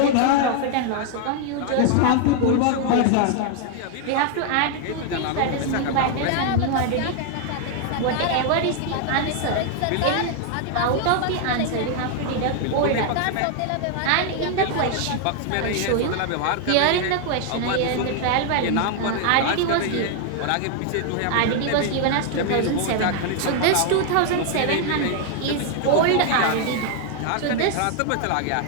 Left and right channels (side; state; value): both; different; correlation 0.00